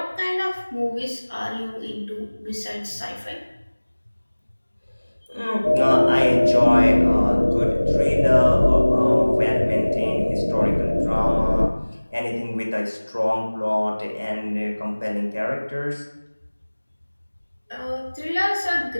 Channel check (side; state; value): both; inverted; correlation -1.00